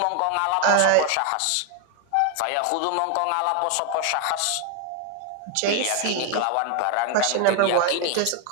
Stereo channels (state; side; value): different; both; correlation 0.01